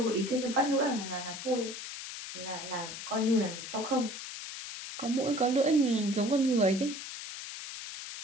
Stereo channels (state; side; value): noise; left; hiss, 9 dB below the sound